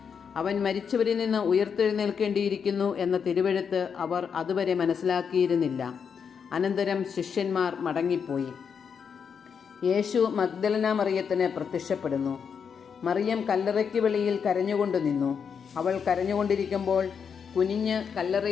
അവൻ മരിച്ചവരിൽ നിന്ന് ഉയർത്തെഴുന്നേൽക്കേണ്ടിയിരിക്കുന്നു എന്ന തിരുവെഴുത്ത് അവർ അതുവരെ മനസ്സിലാക്കിയിരുന്നില്ല. അനന്തരം ശിഷ്യന്മാർ മടങ്ങിപ്പോയി. യേശു മഗ്ദലന മറിയത്തിന് പ്രത്യക്ഷപ്പെടുന്നു. മറിയം കല്ലറയ്ക്ക് വെളിയിൽ കരഞ്ഞുകൊണ്ട് നിന്നു. അവൾ കരഞ്ഞുകൊണ്ടിരിക്കുമ്പോൾ കുനിഞ്ഞ്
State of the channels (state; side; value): quieter; right; 6.7 dB